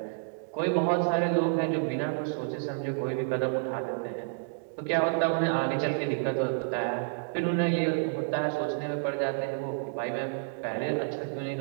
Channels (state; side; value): silent; left; digital silence